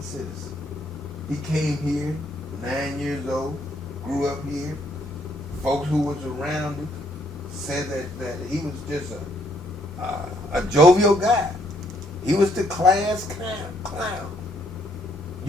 citizen. He came here 9 years old, grew up here. Folks who was around him said that he was just a jovial guy. He was the class clown.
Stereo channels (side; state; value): both; normal; correlation 0.69